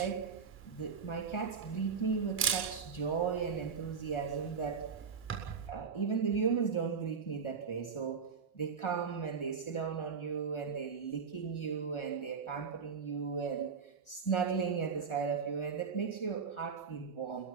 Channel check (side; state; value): left; quieter; 6.0 dB